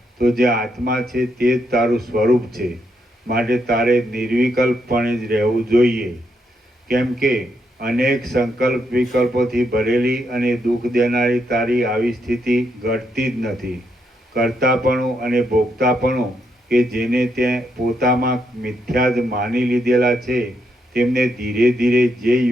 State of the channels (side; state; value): both; normal; correlation 0.78